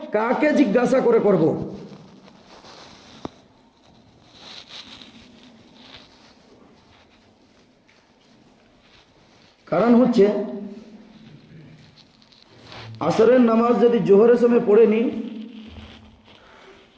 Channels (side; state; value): both; identical; correlation 1.00